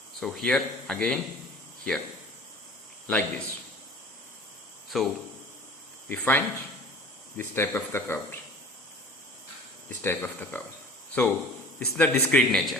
So here again here like this. So we find this type of the curve. This type of the curve. So this is the discrete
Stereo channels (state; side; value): normal; both; correlation 0.43